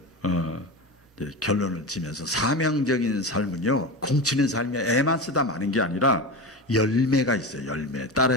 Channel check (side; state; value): both; normal; correlation 0.24